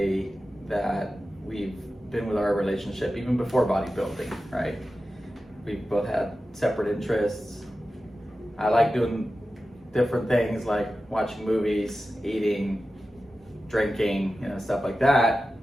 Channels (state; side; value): normal; both; correlation 0.93